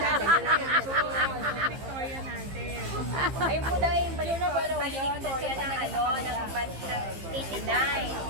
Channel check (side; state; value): left; late; 15 ms